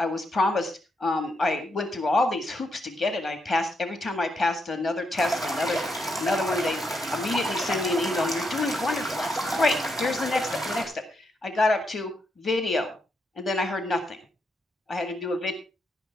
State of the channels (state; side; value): normal; both; correlation 0.80